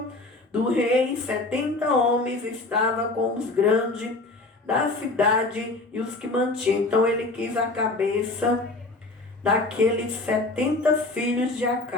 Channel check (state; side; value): quieter; right; 3.1 dB